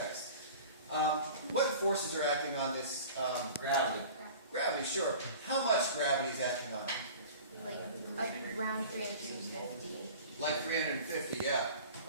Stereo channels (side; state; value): both; inverted; correlation -0.41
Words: What forces are acting on this? Gravity. Gravity, sure. How much gravity is acting on it? Like around 350. Like 350, yeah.